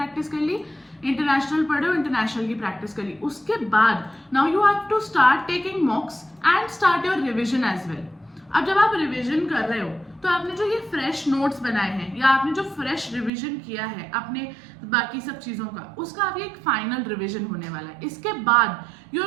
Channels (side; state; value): left; drops out; at 13.3 s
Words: कर ली, इंटरनेशनल पढ़ रहे हो, इंटरनेशनल की प्रैक्टिस कर ली। उसके बाद now you have to start taking mocks and start your revision as well. अब जब आप रिविजन कर रहे हो तो आपने जो ये फ्रेश नोट्स बनाए हैं या आपने जो फ्रेश रिवीजन किया है अपने बाकी सब चीज़ों का, उसका अभी एक फाइनल रिवीजन होने वाला है। इसके बाद you